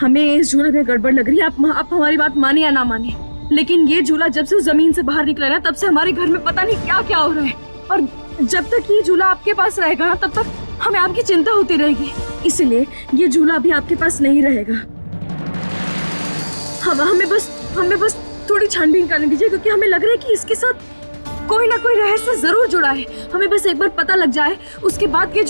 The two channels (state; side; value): inverted; both; correlation -1.00